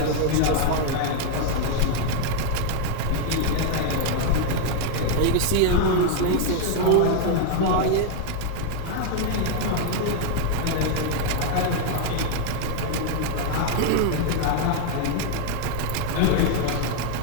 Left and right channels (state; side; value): different; both; correlation 0.00